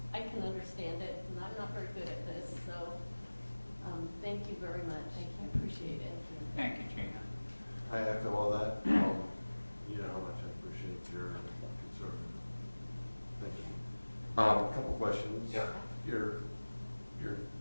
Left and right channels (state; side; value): inverted; both; correlation -1.00